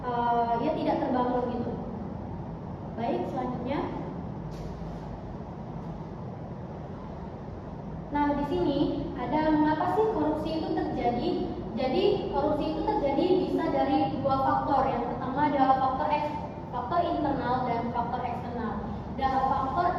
terbangun gitu. Baik, selanjutnya. Nah, di sini ada mengapa sih korupsi itu terjadi? Jadi, korupsi itu terjadi bisa dari dua faktor. Yang pertama adalah faktor internal dan faktor eksternal. Dan faktor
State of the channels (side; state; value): both; identical; correlation 1.00